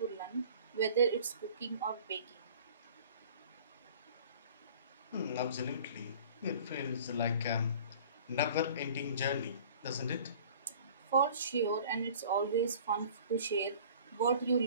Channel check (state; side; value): inverted; both; correlation -0.47